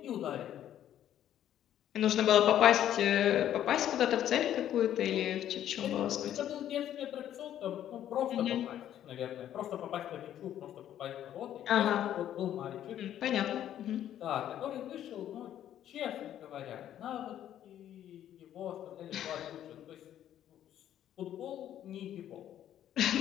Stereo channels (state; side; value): quieter; right; 11.2 dB